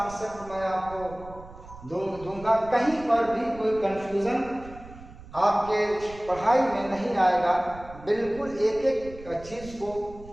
मैं आपको दूंगा। कहीं पर भी कोई कंफ्यूजन आपके पढ़ाई में नहीं आएगा। बिल्कुल एक एक चीज़ को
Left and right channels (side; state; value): right; noise; rumble, 17 dB below the sound